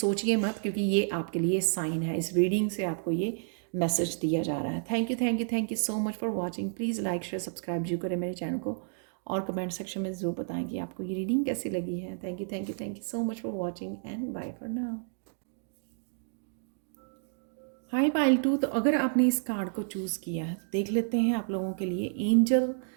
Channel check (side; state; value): left; silent; digital silence